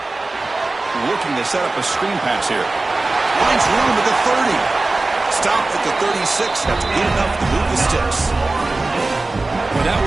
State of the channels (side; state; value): left; quieter; 3.2 dB